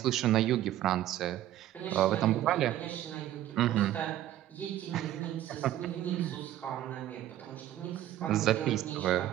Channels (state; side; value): quieter; left; 13.0 dB